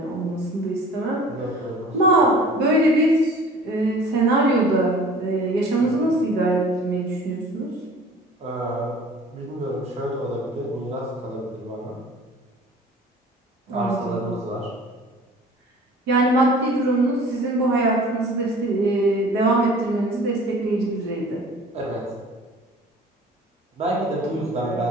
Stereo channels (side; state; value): both; normal; correlation 0.46